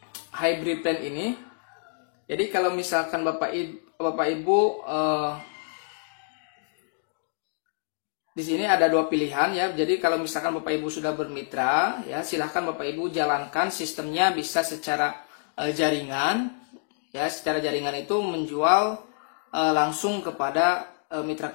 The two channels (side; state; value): right; silent; digital silence